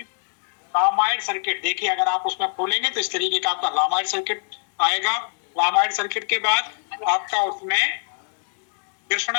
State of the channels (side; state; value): right; silent; digital silence